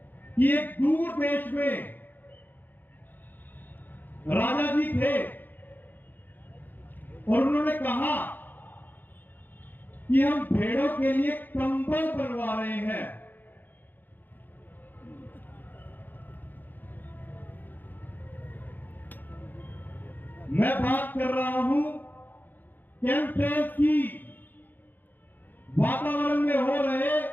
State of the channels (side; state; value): right; late; 0.088 ms